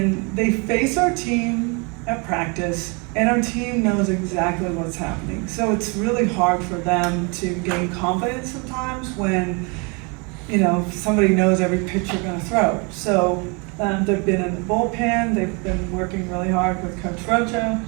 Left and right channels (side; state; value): left; quieter; 31.7 dB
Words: they face our team at practice, and our team knows exactly what's happening. So it's really hard for them to gain confidence sometimes when, you know, somebody knows every pitch you're gonna throw. So they've been in the bullpen, they've been working really hard with Coach Rocha,